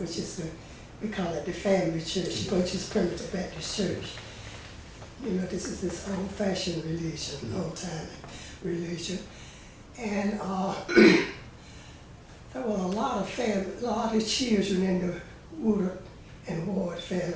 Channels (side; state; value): both; identical; correlation 1.00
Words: is we call it the family church, which is Primitive Baptist Church. This is this old-fashioned religion, old-time religion. And there were a lot of children in the Woodard and Ward